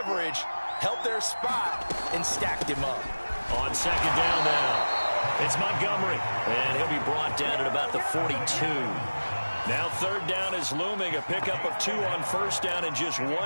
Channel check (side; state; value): both; inverted; correlation -1.00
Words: held their spot, and stacked him up. On second down now, it's Montgomery, and he'll be brought down at about the 42. Now 3rd down is looming, a pickup of 2 on first down and just